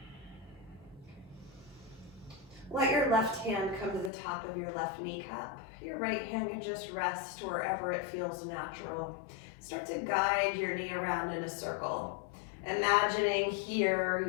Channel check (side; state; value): right; drops out; at 4.1 s